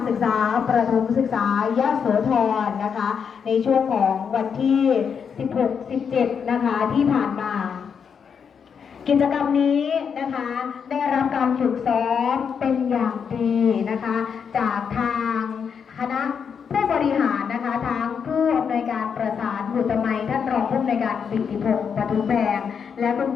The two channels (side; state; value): right; quieter; 6.8 dB